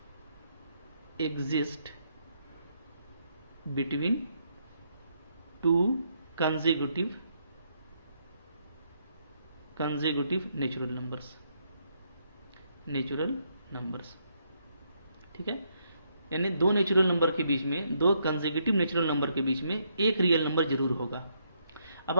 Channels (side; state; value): both; inverted; correlation -0.75